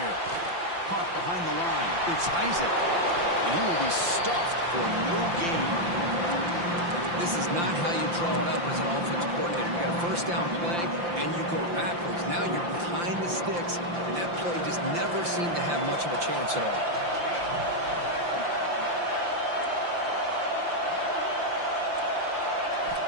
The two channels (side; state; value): left; late; 5.8 ms